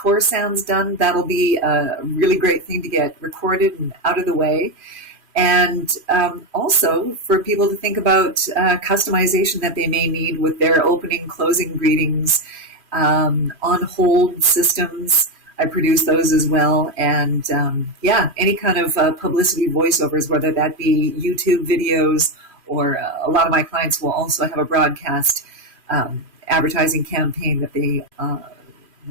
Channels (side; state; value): left; late; 2.5 ms